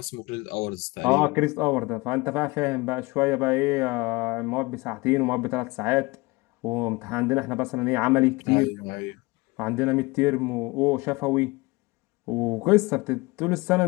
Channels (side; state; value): right; quieter; 23.5 dB